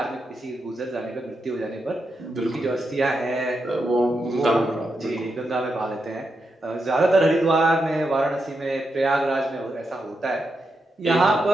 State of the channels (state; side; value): normal; both; correlation 0.85